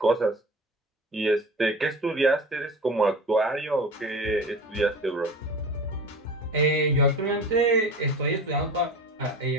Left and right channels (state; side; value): normal; both; correlation 0.35